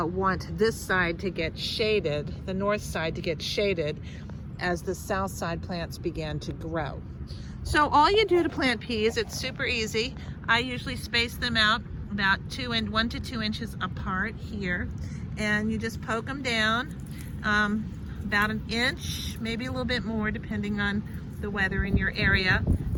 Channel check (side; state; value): both; identical; correlation 1.00